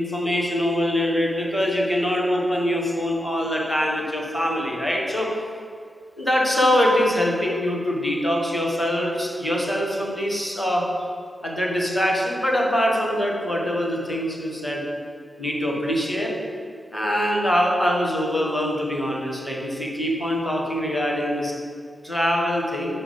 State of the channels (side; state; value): both; normal; correlation 0.85